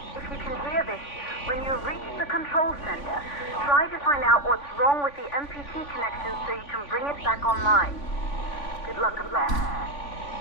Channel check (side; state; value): right; late; 3.5 ms